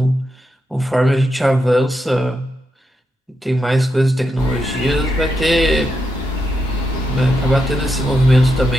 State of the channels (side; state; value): both; normal; correlation 0.84